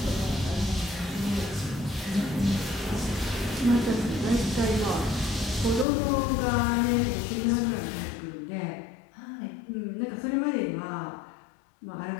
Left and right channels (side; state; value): right; drops out; at 5.9 s